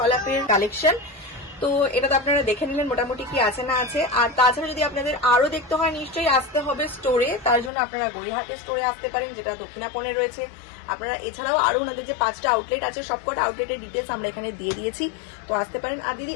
কালেকশন। তো এটা তো আপনারা দেখে নিলেন মোটামুটি কি আছে না আছে। আর তাছাড়া যদি আপনাদের আরো দেখতে হয়, নিশ্চয়ই আসতে হবে স্টোরে। তার জন্য আপনারা গড়িয়াহাটের স্টোরে আসতে পারেন, যেটা দক্ষিণাপনে রয়েছে। আপনারা এছাড়াও আরো ওনাদের যে 5টা আউটলেট আছে, সবকটা আউটলেটের ডিটেলস আমরা এখানে দিয়ে দিয়েছি, তো আসতে পারেন। আর দিদি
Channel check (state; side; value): drops out; right; at 7.7 s